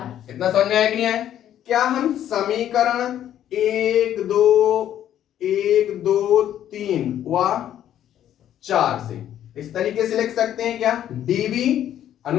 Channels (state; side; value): quieter; right; 11.0 dB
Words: इतना समझ में आया कि नहीं आया। क्या हम समीकरण 1 2 3 व 4 से इस तरीके से लिख सकते हैं, क्या, डीबी